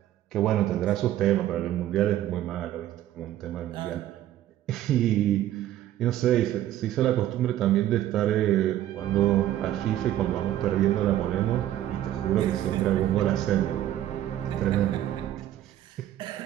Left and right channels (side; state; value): left; quieter; 12.8 dB